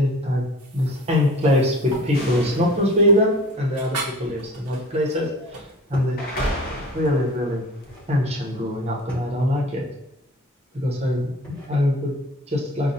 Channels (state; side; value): normal; both; correlation 0.43